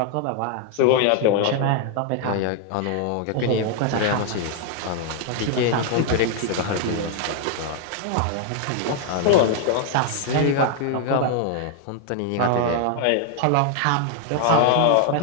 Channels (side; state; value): both; different; correlation 0.00